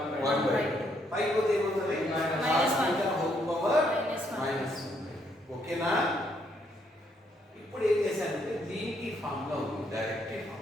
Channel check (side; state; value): both; normal; correlation 0.72